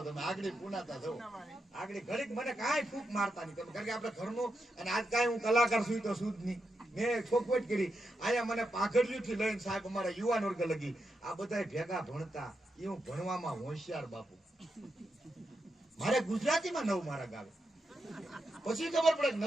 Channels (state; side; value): normal; both; correlation 0.85